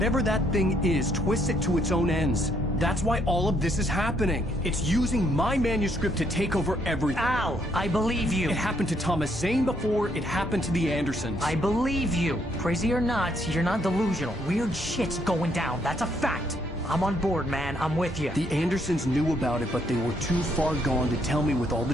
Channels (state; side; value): normal; both; correlation 0.71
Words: that thing is, twists it to its own ends. That's why all of this is happening. It's using my manuscript to take over everything. Al, I believe you. It happened to Thomas Zane before, it happened to the Andersons. I believe you. Crazy or not, you're not delusional. Weird shit's going down. That's a fact. I'm on board, man. I'm with you. The Andersons knew about it, but they were too far gone to tell me with all the